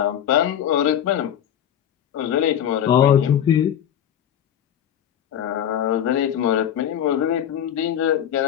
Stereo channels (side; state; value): right; quieter; 9.8 dB